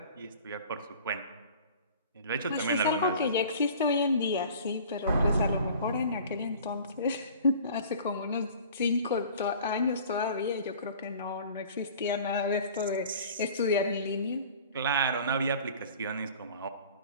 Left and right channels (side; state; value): both; inverted; correlation -0.45